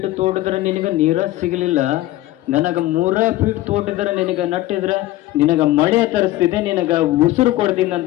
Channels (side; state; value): right; quieter; 16.2 dB